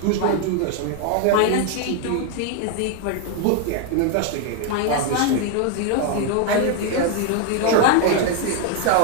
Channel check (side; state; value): both; different; correlation 0.01